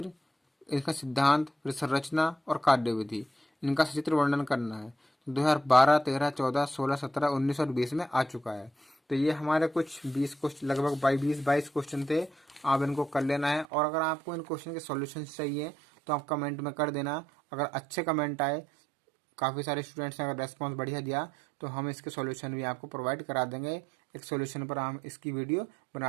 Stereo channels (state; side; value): drops out; left; at 13.7 s